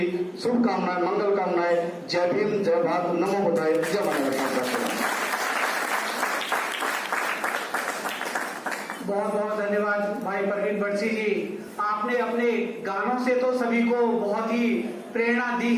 शुभकामनाएं, मंगल कामनाएं। जय भीम, जय भारत, नमो बुद्धाय, जय भारत। बहुत बहुत धन्यवाद भाई प्रवीण बरसी जी। आपने अपने गानों से तो सभी को बहुत ही प्रेरणा दी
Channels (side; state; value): both; identical; correlation 1.00